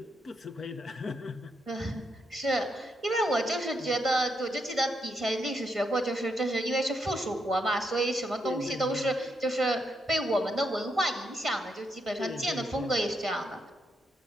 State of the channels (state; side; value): normal; both; correlation 0.79